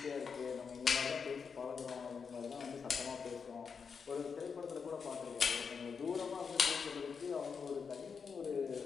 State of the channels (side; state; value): right; quieter; 5.9 dB